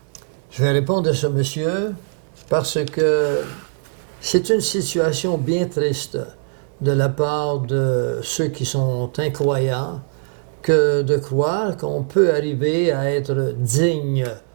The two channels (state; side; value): silent; left; digital silence